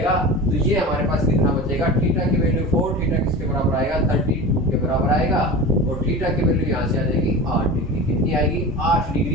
तो ये हमारे पास कितना बचेगा, थीटा की वैल्यू 4 थीटा किसके बराबर आएगा 32 के बराबर आएगा और थीटा की वैल्यू यहाँ से आ जाएगी 8 डिग्री। कितनी आएगी 8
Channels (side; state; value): both; normal; correlation 0.31